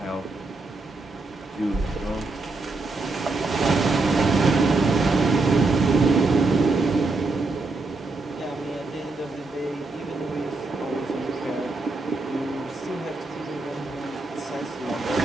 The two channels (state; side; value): quieter; left; 3.4 dB